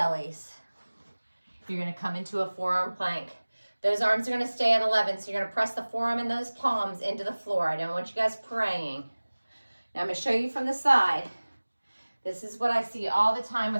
You're gonna come into a forearm plank. Those arms are gonna stay at 11, so you're gonna press the forearm and those palms into the floor. I don't want you guys praying. Now I'm gonna show you from the side. This is what I see all the time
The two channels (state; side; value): inverted; both; correlation -1.00